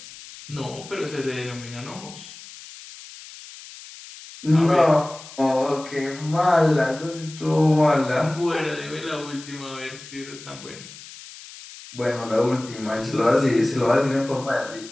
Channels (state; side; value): noise; left; hiss, 16 dB below the sound